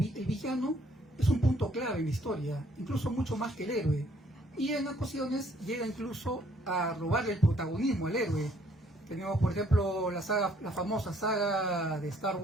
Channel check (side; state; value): both; normal; correlation 0.64